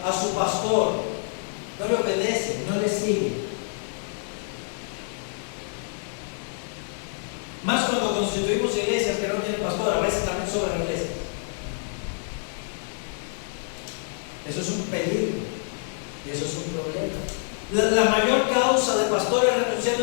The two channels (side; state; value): right; silent; digital silence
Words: a su pastor, no le obedece, no le sigue. Más cuando constituimos iglesias que no tienen pastor, a veces también sobran iglesias. Eso es un peligro y eso es un problema. La mayor causa de pastores